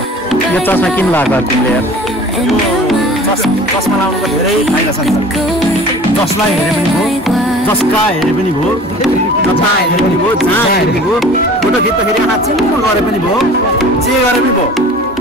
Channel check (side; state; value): both; normal; correlation 0.44